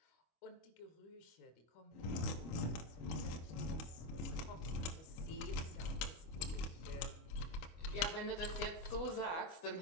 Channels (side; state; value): right; late; 25 ms